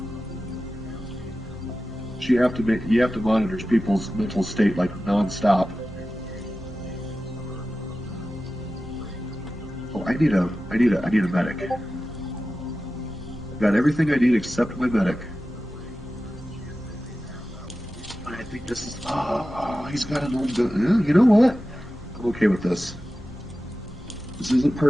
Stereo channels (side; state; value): both; normal; correlation 0.94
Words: You have to monitor people's mental state like nonstop. Oh, I need a medic. I've got everything I need except my medic. I think this is. Oh, he's got an old gun. You know what? I'm okay with this. This isn't